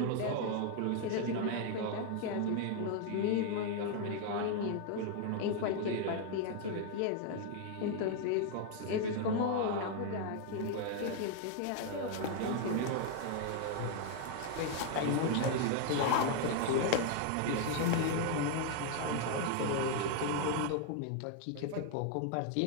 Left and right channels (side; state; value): both; different; correlation 0.00